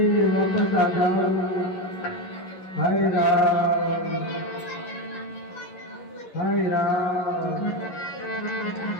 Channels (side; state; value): right; late; 11 ms